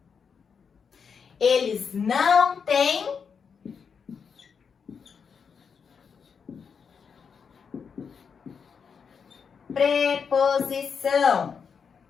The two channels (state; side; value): quieter; right; 6.3 dB